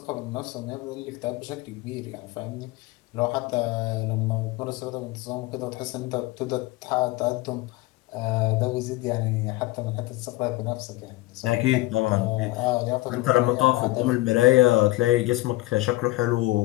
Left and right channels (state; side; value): quieter; right; 18.9 dB